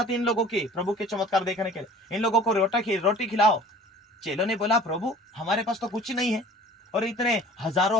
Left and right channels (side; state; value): both; normal; correlation 0.46